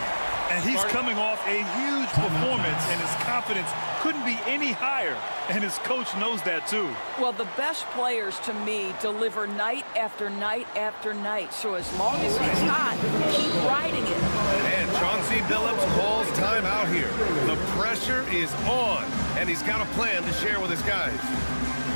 And he's coming off a huge performance, and his confidence couldn't be any higher. And his coach knows that, too. Well, the best players, to me, deliver night after night after night. So as long as he's hot, keep riding it. And Chauncey Billups calls time out here. The pressure is on, and he's got a plan to share with his guys.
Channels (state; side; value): inverted; both; correlation -1.00